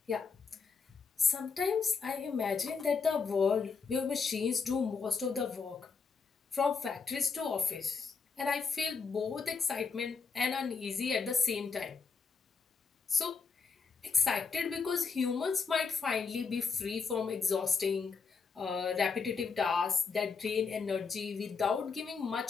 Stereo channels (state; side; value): quieter; right; 5.2 dB